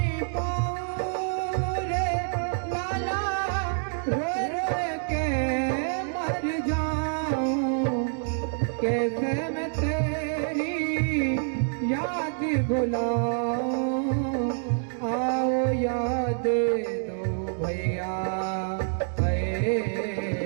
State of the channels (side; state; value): left; silent; digital silence